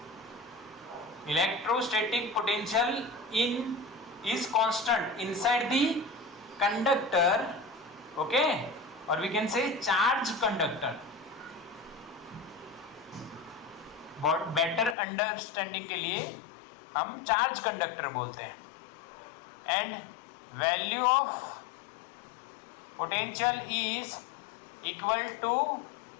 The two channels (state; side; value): drops out; right; at 15.0 s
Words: Electrostatic potential is constant inside the conductor, okay, or we can say charge conductor. बहुत बेटर अंडरस्टैंडिंग के लिए हम चार्ज कंडक्टर बोलते हैं। And value of potential is equal to